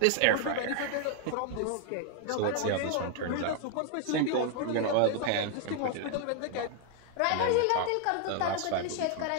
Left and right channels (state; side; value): different; both; correlation 0.00